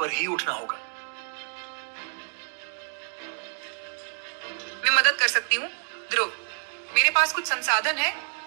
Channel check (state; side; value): silent; left; 59 dB below the other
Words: ही उठना होगा। मैं मदद कर सकती हूँ ध्रुव, मेरे पास कुछ संसाधन है।